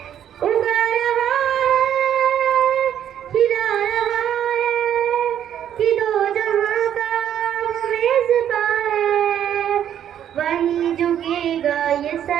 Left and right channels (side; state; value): left; quieter; 10.1 dB